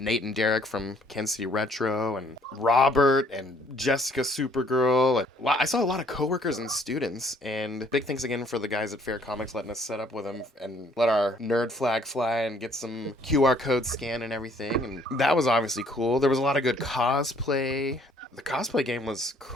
and Derek from Kansas City Retro, and Robert and Jessica Supergirl. And I saw a lot of coworkers and students, and big thanks again for the guys at Fair Comics letting us set up with them and let our nerd flag fly and get some QR code scan and everything, and that was obviously cool. There was a lot of good cosplay. The cosplay game was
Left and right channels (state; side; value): normal; both; correlation 0.62